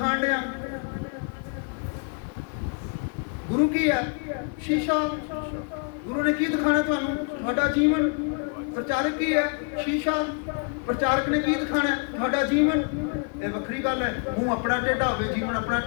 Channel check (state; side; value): quieter; right; 38.9 dB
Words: ਲਿਆ। ਗੁਰੂ ਕੀ ਹੈ? ਸ਼ੀਸ਼ਾ। ਗੁਰੂ ਨੇ ਕੀ ਦਿਖਾਣਾ ਤੁਹਾਨੂੰ? ਤੁਹਾਡਾ ਜੀਵਨ। ਪ੍ਰਚਾਰਕ ਕੀ ਹੈ? ਸ਼ੀਸ਼ਾ। ਪ੍ਰਚਾਰਕ ਨੇ ਕੀ ਦਿਖਾਣਾ? ਤੁਹਾਡਾ ਜੀਵਨ। ਇਹ ਵੱਖਰੀ ਗੱਲ ਹੈ, ਮੂੰਹ ਆਪਣਾ ਟੇਢਾ ਹੋਵੇ, ਜੀਵਨ ਆਪਣਾ